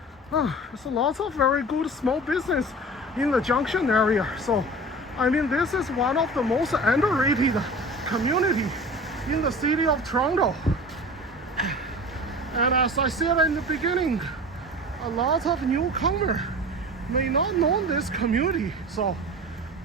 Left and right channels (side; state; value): both; normal; correlation 0.37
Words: There's a lot of very good small business in the Junction area. So, I mean, this is one of the most underrated community in the city of Toronto. And as I said in the beginning, a lot of newcomers may not know this community. So,